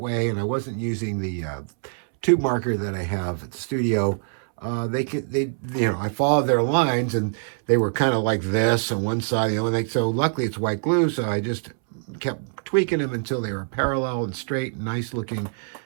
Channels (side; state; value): left; silent; 62 dB below the other